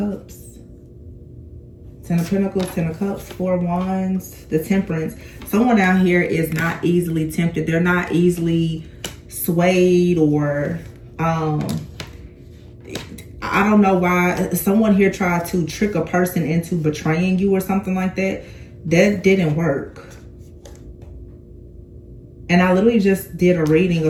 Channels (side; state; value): both; identical; correlation 1.00